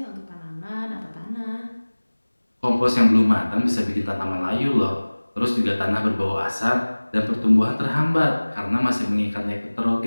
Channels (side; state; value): both; inverted; correlation -1.00